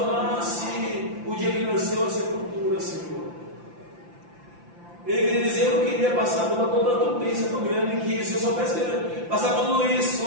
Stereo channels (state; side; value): late; left; 5.8 ms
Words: o dia que nasceu a sepultura, Senhor. Ele queria dizer: eu não queria passar por toda a tupência tão grande que, se eu soubesse passar por tudo isso,